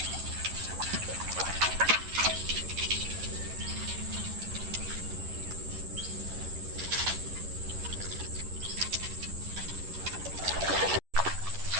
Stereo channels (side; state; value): left; late; 11 ms